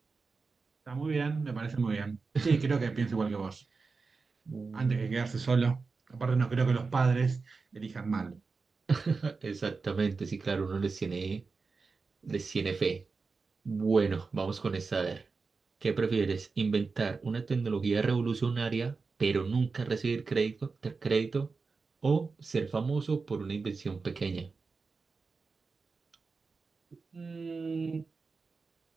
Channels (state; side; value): quieter; left; 4.4 dB